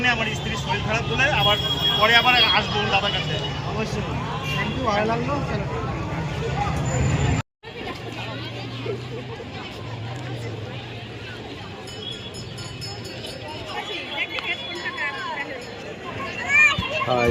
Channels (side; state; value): both; identical; correlation 1.00